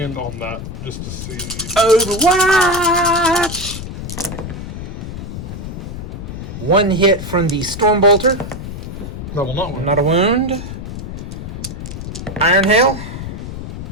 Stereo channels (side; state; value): left; noise; rumble, 8 dB below the sound